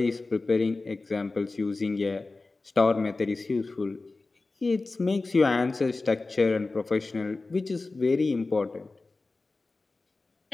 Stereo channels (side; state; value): right; quieter; 3.5 dB